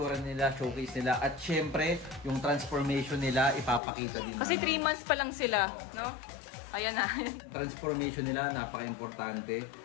nila, showcase nila at syempre yung transformation nila ipapakita din Kasi 3 namin. months pa lang sila, no? Ayan na. Transformation nila napaka-importante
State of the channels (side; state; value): right; drops out; at 3.8 s